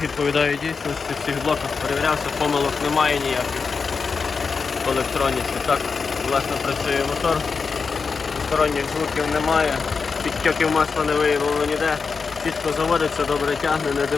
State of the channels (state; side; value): quieter; right; 5.1 dB